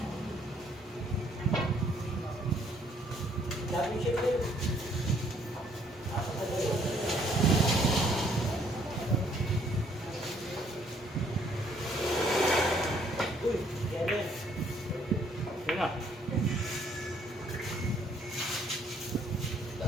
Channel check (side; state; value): both; normal; correlation 0.65